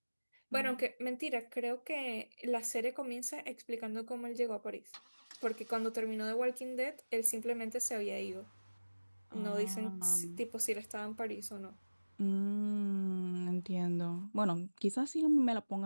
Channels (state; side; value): inverted; both; correlation -1.00